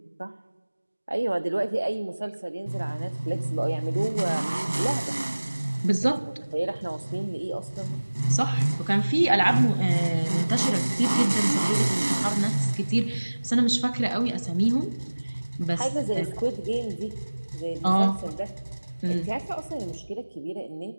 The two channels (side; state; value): both; inverted; correlation -1.00